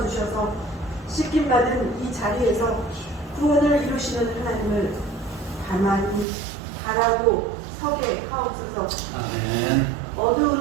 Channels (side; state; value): left; drops out; at 6.2 s